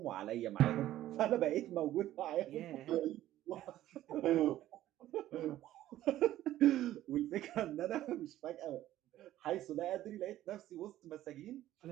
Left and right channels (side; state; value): left; quieter; 13.8 dB